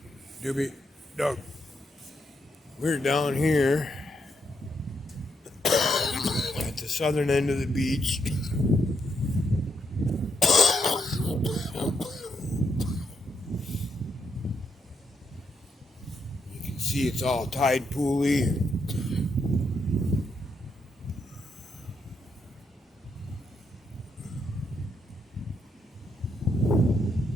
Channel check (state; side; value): normal; both; correlation 0.78